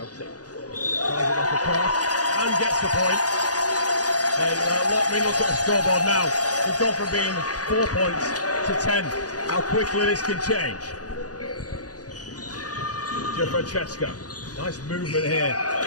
And gets the point. And let me look at the scoreboard now. We've gone from being 4 points to 10. How quickly this can change. Francesco. Nice movement here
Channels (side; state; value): right; late; 0.68 ms